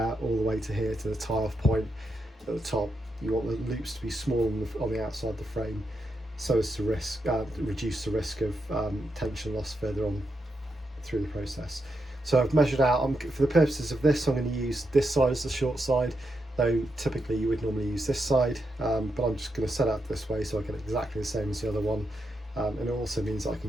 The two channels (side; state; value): both; normal; correlation 0.84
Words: all the way to here to the tie-off point at the top. You want the loops to be small on the outside of the frame, so as to reduce the risk of tension loss further on through the process. So I've measured out, for the purposes of this, I'm going to use this side as the short side, though typically you would normally use this side, but I'm just going to set out this way so I get exactly the same as the other one. And it also means I